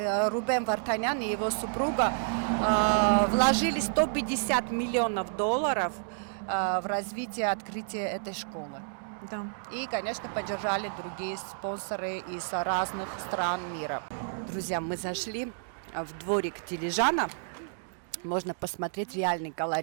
Рубен Вартанян и его супруга вложили $150 миллионов в развитие открытия этой школы. Да. И, конечно, поддержали другие спонсоры из разных стран мира. Друзья, мы зашли в дворик Дилижана. Можно посмотреть реальный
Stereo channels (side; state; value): left; silent; digital silence